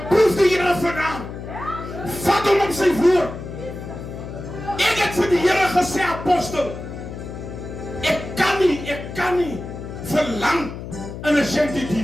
die Here vanaand. Vat hom op sy woord. Ek het vir die Here gesê, apostel, ek kan nie verlang in 'n shanty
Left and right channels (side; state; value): left; noise; hum, 10 dB below the sound